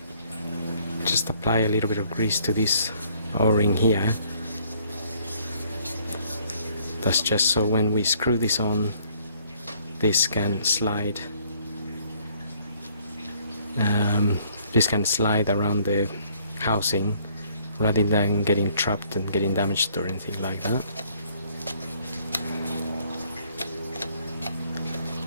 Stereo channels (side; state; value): both; inverted; correlation -0.63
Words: Just apply a little bit of grease to this O-ring here. That's just so when we screw this on, this can slide. This can slide around the housing rather than getting trapped and getting damaged or anything like that.